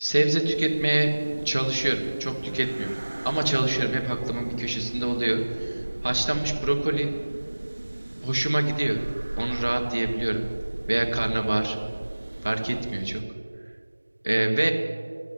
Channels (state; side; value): inverted; both; correlation -1.00